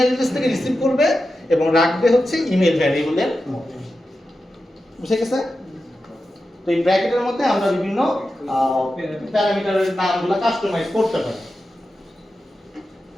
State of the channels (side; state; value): both; normal; correlation 0.91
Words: অ্যাড্রেস থেকে রিসিভ করবে এবং রাখবে হচ্ছে ইমেল ভ্যারিয়েবলের মধ্যে। বুঝে গেছে? তো এই ব্র্যাকেটের মধ্যে আমরা বিভিন্ন প্যারামিটারের নামগুলো কাস্টমাইজ করতে পারি।